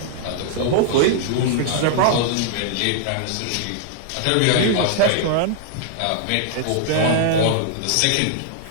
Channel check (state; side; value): different; both; correlation -0.01